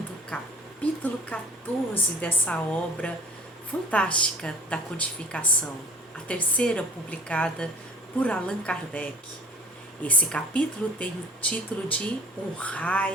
o capítulo 14 dessa obra fantástica da codificação, a terceira publicada por Allan Kardec. Esse capítulo tem o título de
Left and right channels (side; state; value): both; normal; correlation 0.46